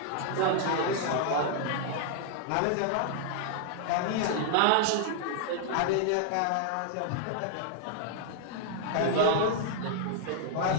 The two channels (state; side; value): different; both; correlation 0.00